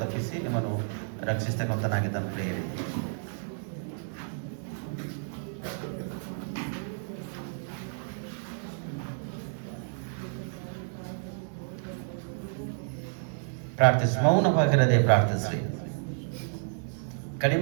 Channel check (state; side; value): silent; left; digital silence